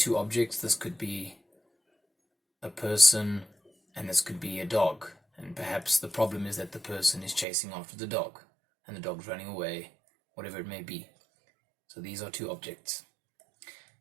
objects. This could be a person and this could be a dog. And perhaps the problem is that the person is chasing after the dog and the dog's running away, whatever it may be. So these are two objects.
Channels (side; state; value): left; drops out; at 7.5 s